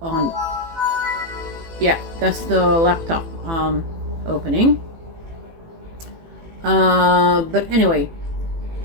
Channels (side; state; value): left; late; 18 ms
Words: on, yeah, that's the laptop opening. But anyway,